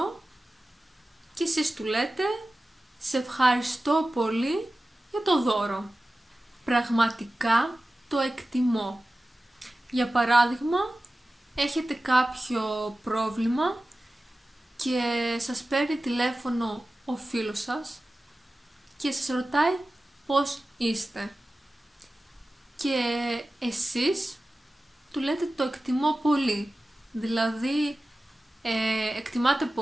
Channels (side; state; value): both; normal; correlation 0.95